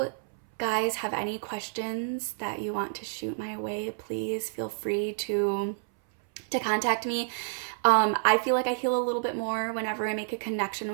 guys have any questions that you want to shoot my way, please feel free to contact me. I feel like I heal a little bit more whenever I make a connection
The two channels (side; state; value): left; silent; 58 dB below the other